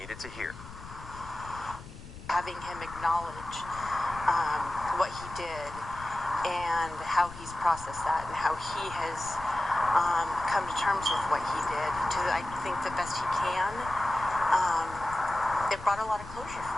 to hear. Having him acknowledge what he did and how he's processed that and how he has come to terms with what he did to, I think, the best he can, it brought a lot of closure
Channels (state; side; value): noise; left; rumble, 14 dB below the sound